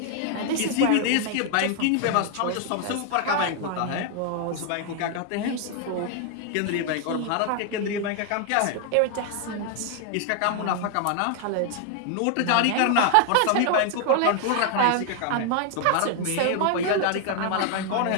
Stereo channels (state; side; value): different; both; correlation 0.00